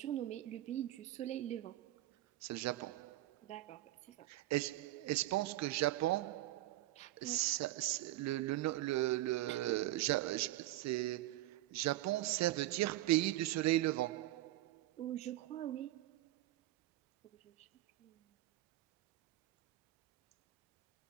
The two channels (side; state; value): left; quieter; 15.8 dB